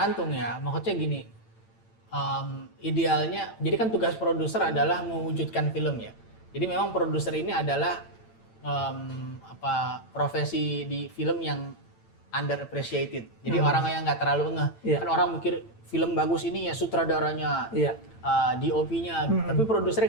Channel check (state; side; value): late; right; 8.9 ms